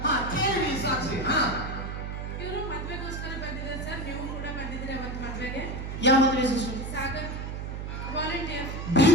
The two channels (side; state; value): right; noise; hum, 6 dB below the sound